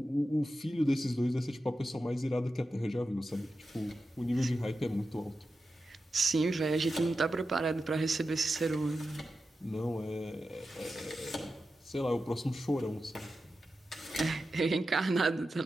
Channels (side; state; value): both; normal; correlation 0.91